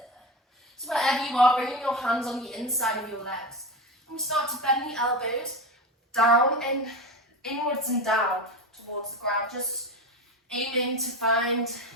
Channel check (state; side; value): normal; both; correlation 0.22